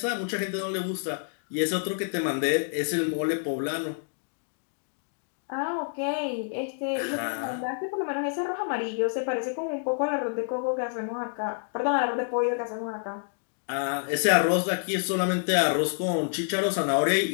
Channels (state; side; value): silent; right; digital silence